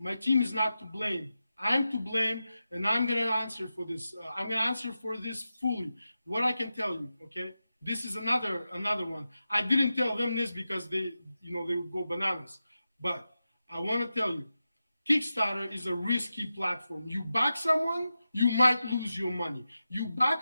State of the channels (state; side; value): inverted; both; correlation -0.92